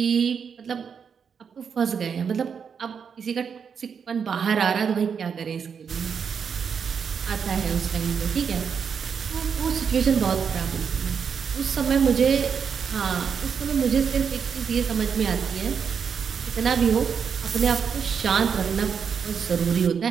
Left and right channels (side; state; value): left; quieter; 6.7 dB